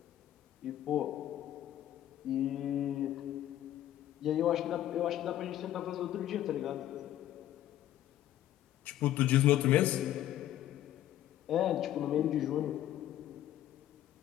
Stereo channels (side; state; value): right; quieter; 12.7 dB